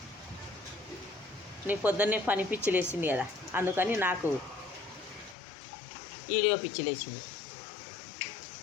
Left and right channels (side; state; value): right; drops out; at 5.4 s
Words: నీ పొద్దున్నే పని పిచ్చిలు వేసింది కదా, అందుకని నాకు వీడియో పిచ్చిలు వేసింది.